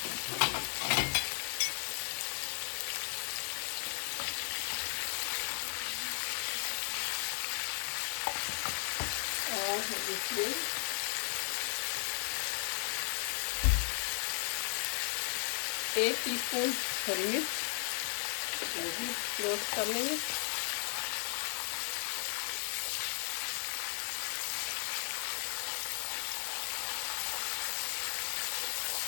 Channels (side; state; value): right; silent; digital silence